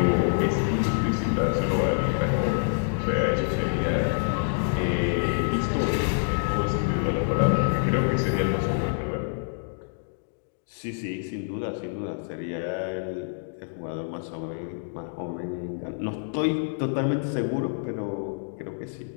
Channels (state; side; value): silent; right; digital silence